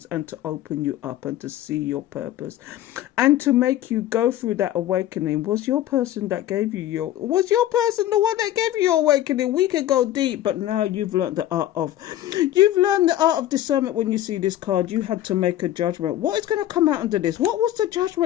and to open you up and to see your purpose and to make you go through that awakening. Was your person the one that gave you your awakening? We could go deep, but now you've learned the art of discernment. When you see this card, you had to make a judgment. What is going to come out under this? What was the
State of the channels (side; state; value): right; quieter; 13.1 dB